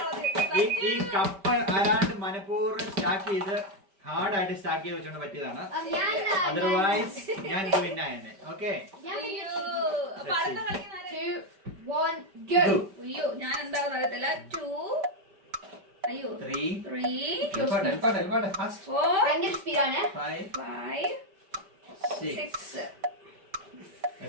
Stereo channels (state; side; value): late; left; 5.1 ms